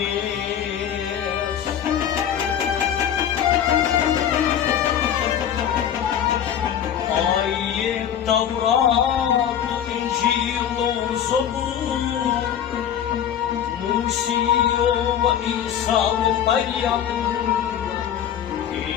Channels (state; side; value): quieter; right; 9.5 dB